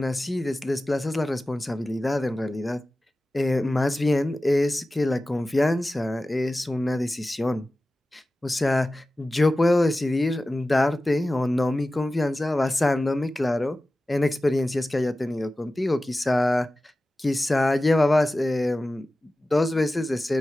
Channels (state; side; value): normal; both; correlation 0.96